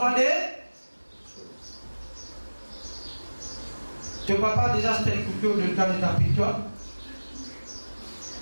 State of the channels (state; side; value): inverted; both; correlation -1.00